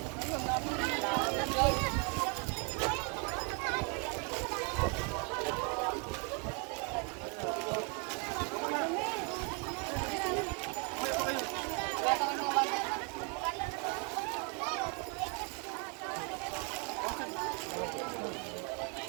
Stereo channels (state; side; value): quieter; left; 33.8 dB